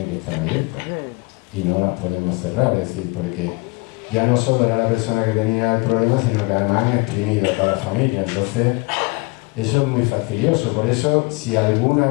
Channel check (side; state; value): right; quieter; 26.6 dB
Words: que estar abiertas y no las podemos cerrar, es decir, porque ya no solo era la persona que tenía el problema, sino que además han exprimido a toda la familia. Entonces, eso es muy fastidioso. Por eso, si alguna